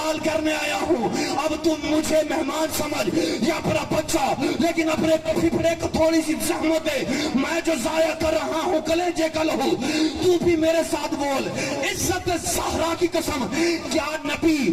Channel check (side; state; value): both; identical; correlation 1.00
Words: करने आया हूं। अब तुम मुझे मेहमान समझ या अपना बच्चा, लेकिन अपने पिपड़े को थोड़ी सी जहमत दे। मैं जो जाया कर रहा हूं कलेजे का लहू, तू भी मेरे साथ बोल, इज्जत सहरा की कसम, क्या नबी